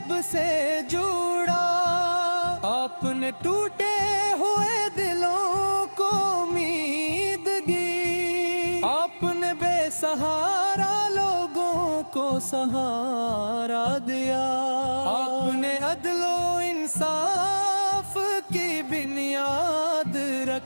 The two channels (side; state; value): both; inverted; correlation -1.00